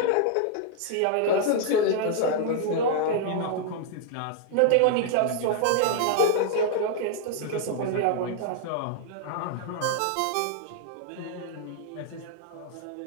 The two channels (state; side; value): different; both; correlation -0.01